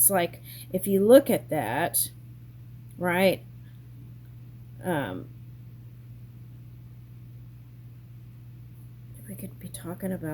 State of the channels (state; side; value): identical; both; correlation 1.00